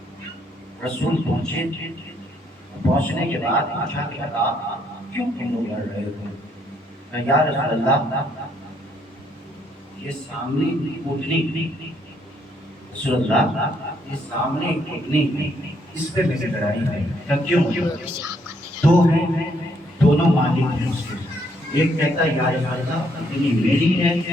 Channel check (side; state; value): both; normal; correlation 0.71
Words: رسول پہنچنے کے بعد پوچھا کہ کیوں تم لوگ لڑ رہے ہو؟ یا رسول اللہ یہ سامنے اٹھنی، رسول اللہ یہ سامنے اٹھنی اس پہ میری لڑائی ہے۔ کیوں؟ 2 ہیں، دونوں مالک ہیں اس کے، ایک کہتا ہے یا رسول اللہ اتنی میری ہے،